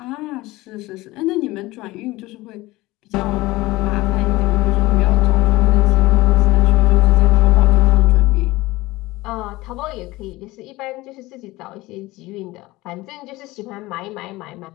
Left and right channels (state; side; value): quieter; right; 19.7 dB